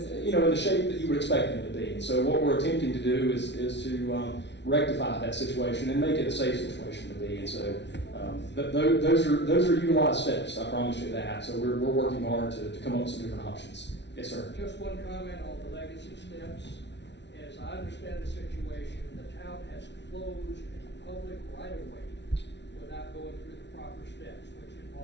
shape that you would expect them to be. And so what we're attempting to do is to rectify that situation and make it a safe situation to be. And so those are utilized steps. I promise you that. So we're working hard to come up with some different options. Yes, sir. Just one comment on the Legacy steps. As I understand the situation, the town has closed a public right-of-way without going through the proper steps, which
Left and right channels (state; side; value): late; right; 0.51 ms